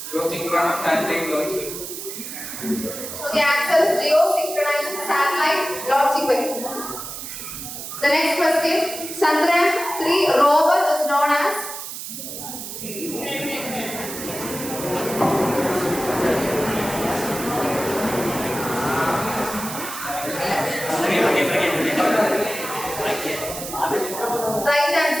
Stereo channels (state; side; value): noise; right; hiss, 8 dB below the sound